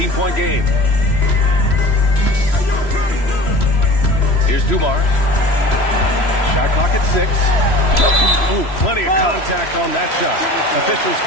game. Here's Dumars. Shot clock at 6. Ooh, plenty of contact on that shot. Officials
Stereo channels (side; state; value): right; late; 3.0 ms